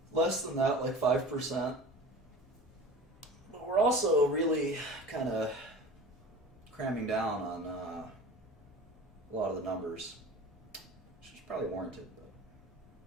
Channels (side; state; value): both; normal; correlation 0.38